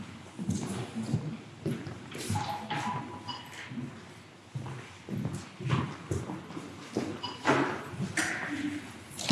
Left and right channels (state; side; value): identical; both; correlation 1.00